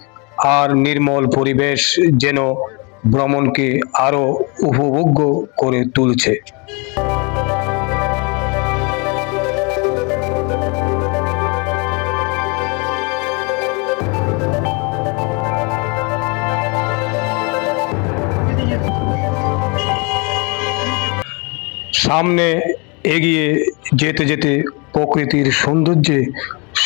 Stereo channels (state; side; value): quieter; right; 31.2 dB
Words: আর নির্মল পরিবেশ যেন ভ্রমণকে আরো উপভোগ্য করে তুলছে। সামনে এগিয়ে যেতে যেতে প্রকৃতির সৌন্দর্যে